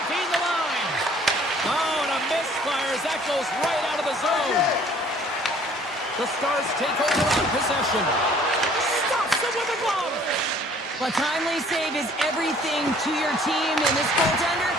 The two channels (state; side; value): normal; both; correlation 0.56